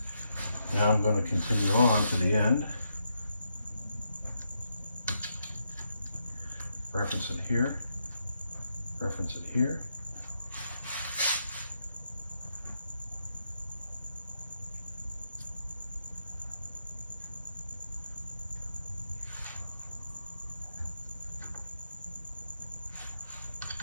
Now I'm going to continue on to the end. Reference it here. Reference it here.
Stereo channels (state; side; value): inverted; both; correlation -0.81